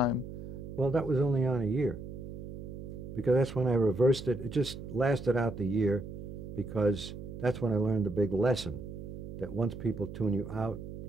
Well, that was only on a year because that's when I reversed it. It just lasted out the year because that's when I learned the big lesson that once people tune you out,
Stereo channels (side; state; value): right; noise; hum, 10 dB below the sound